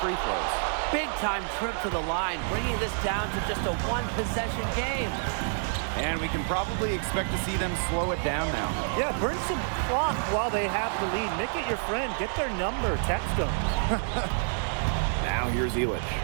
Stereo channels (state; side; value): silent; left; digital silence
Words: throws. Big time trip to the line, bringing this down to just a 1-possession game. And we can probably expect to see them slow it down now. Yeah, burn some clock while they have the lead. Make it your friend. Get their number. Text them. Now here's Elich.